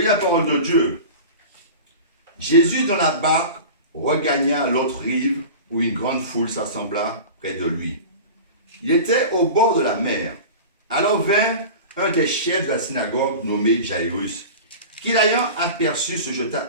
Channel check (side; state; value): both; inverted; correlation -0.34